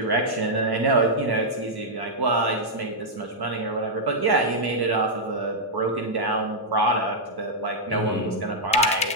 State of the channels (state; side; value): normal; both; correlation -0.06